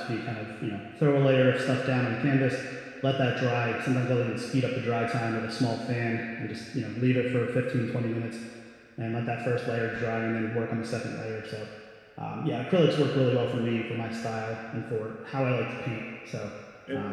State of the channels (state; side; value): identical; both; correlation 1.00